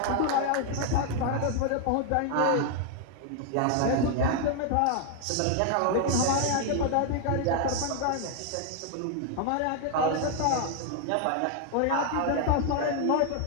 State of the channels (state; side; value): different; both; correlation 0.00